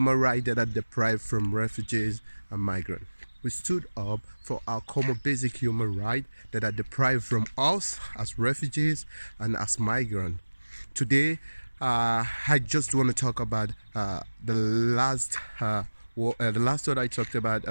rights that are deprived from refugees and migrants. We stood up for our common basic human rights that are deprived from us as refugees and as migrants. Today, I just want to talk about the last one I talked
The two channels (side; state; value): both; inverted; correlation -1.00